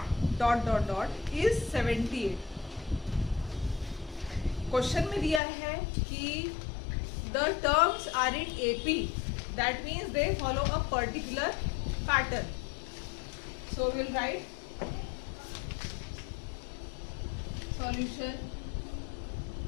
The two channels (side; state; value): right; drops out; at 5.4 s